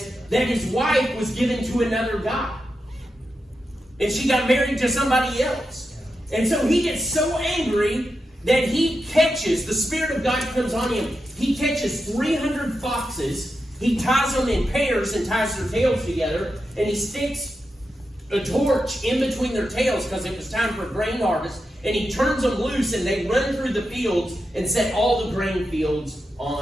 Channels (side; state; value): both; normal; correlation 0.88